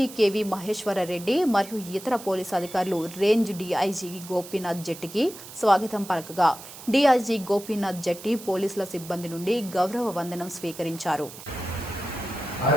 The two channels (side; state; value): right; noise; hiss, 15 dB below the sound